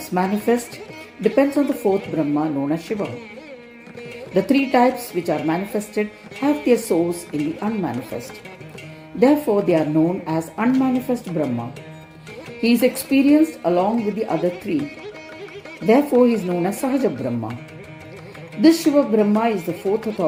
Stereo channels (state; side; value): identical; both; correlation 1.00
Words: manifest depends on the fourth Brahma known as Shiva. The three types which are manifested have their source in the unmanifest. Therefore, they are known as unmanifest Brahma. He is experienced along with the other three. Therefore, he is known as Sahaja Brahma. This Shiva Brahma is the fourth